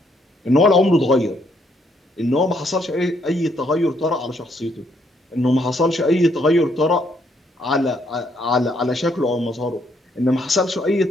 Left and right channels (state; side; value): normal; both; correlation 0.72